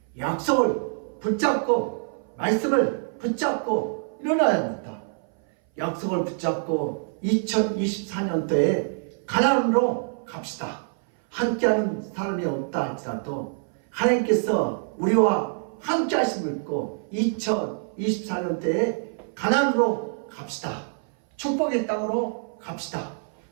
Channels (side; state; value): left; silent; 57 dB below the other